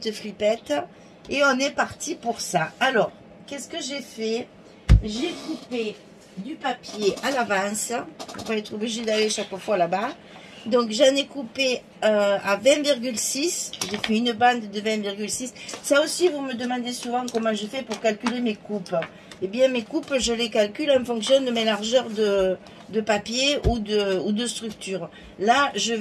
flippettes. Et on est parti pour ça. Alors, qu'est-ce que j'ai fait? J'ai coupé du papier à l'avance pour pas être obligé d'aller chaque fois là-bas. Donc j'en ai coupé à 20,6. J'ai fait une bande de 20,6. Ça aussi, vous me demandez souvent comment je fais pour calculer mes coupes. Eh bien, mes coupes, je les calcule en fonction de mes largeurs de papier ou de structure. Là, je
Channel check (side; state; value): both; identical; correlation 1.00